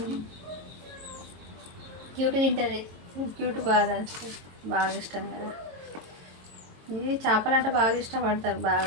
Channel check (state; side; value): late; left; 22 ms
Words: క్యూట్ తింటుంది. క్యూట్ బాగా ఇష్టం కదా. ఇది చేపలు అంటే బాగా ఇష్టపడతారు.